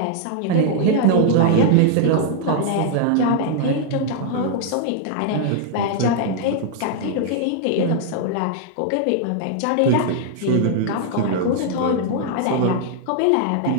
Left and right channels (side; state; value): both; different; correlation -0.01